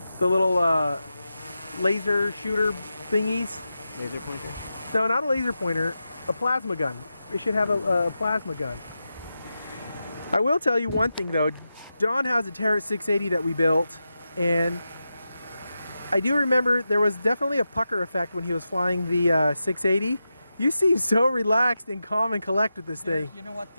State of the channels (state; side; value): inverted; both; correlation -0.90